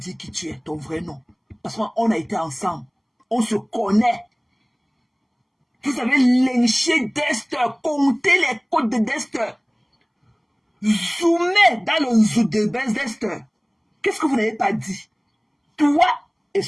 qui tu es, ton vrai nom. Parce qu'on a été ensemble. On se connaît. Vous avez lynché Dest, compté les côtes de Dest. Zoomez dans le zoo de Bethesda. Qu'est-ce que vous n'avez pas dit? Toi et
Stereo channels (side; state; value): both; identical; correlation 1.00